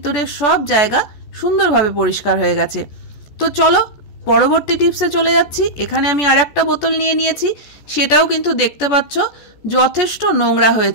সব জায়গা সুন্দরভাবে পরিষ্কার হয়ে গেছে। তো চলো পরবর্তী টিপসে চলে যাচ্ছি। এখানে আমি আর একটা বোতল নিয়ে নিয়েছি, সেটাও কিন্তু দেখতে পাচ্ছ যথেষ্ট নোংরা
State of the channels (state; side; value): late; right; 14 ms